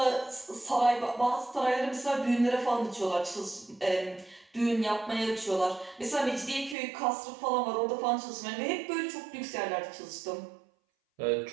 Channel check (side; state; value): left; drops out; at 6.8 s